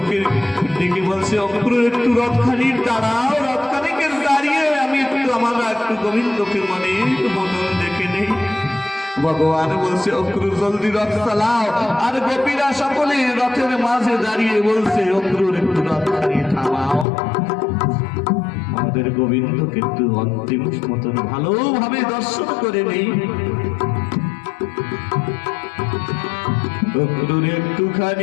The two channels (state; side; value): drops out; right; at 17.1 s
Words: ডেকে বলছে, অক্রুর একটু রথখানি দাঁড়াও, রথখানিকে দাঁড়িয়ে আমি একটু গোবিন্দকে মনে দেখে নেই। ভগবান বলছে, অক্রুর জলদি রথ চালাও। আর গোপীরা সকলে রথের মাঝে দাঁড়িয়ে বলছে, অক্রুর একটু রথখানি থামাও, আমাদের গোবিন্দকে একটু অন্তিম মতন ভালোভাবে দর্শন করে নেই। অক্রুর